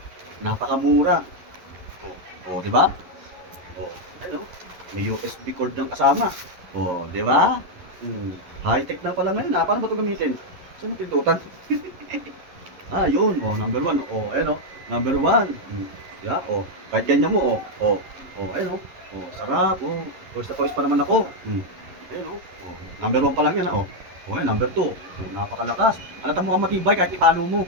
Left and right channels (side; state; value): left; late; 11 ms